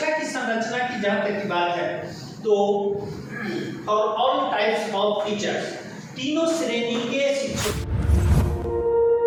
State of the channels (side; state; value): both; identical; correlation 1.00